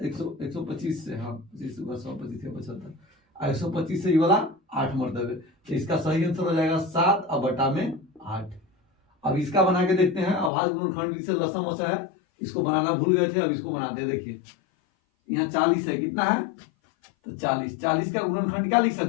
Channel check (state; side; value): drops out; right; at 10.5 s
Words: से, हाँ 25 75, 125 से ये वाला 8 मरतबे, तो इसका सही आंसर हो जाएगा 7/8। अब इसका बना के देखते हैं। अभाज्य गुणनखंड से लसम वसा है, इसको बनाना भूल गए थे, अब इसको बनाते हैं। देखिए यहाँ 40 है, कितना है तो 40 का गुणनखंड क्या लिख